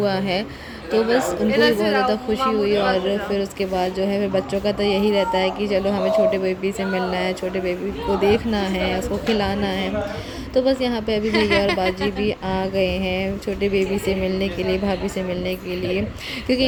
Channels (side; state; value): both; identical; correlation 1.00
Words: है। तो बस उनको भी बहुत ज़्यादा खुशी हुई। और फिर उसके बाद जो है, फिर बच्चों का तो यही रहता है कि चलो हमें छोटे बेबी से मिलना है, छोटे बेबी को देखना है, उसको खिलाना है। तो बस यहाँ पे अभी भैया और बाजी भी आ गए हैं छोटे बेबी से मिलने के लिए, भाभी से मिलने के लिए। क्योंकि